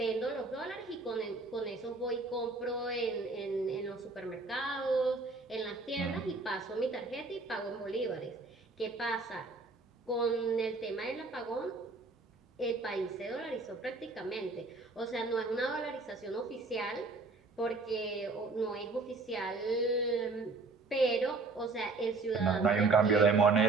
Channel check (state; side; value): quieter; left; 3.7 dB